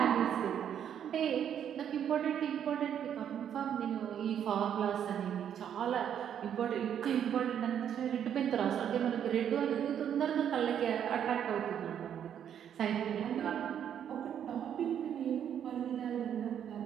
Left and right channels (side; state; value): left; quieter; 9.2 dB